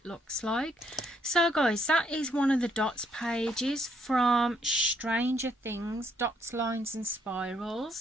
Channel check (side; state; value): both; normal; correlation 0.71